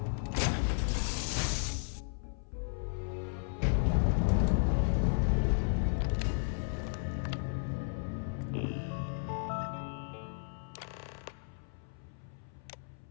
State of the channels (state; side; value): silent; right; 55 dB below the other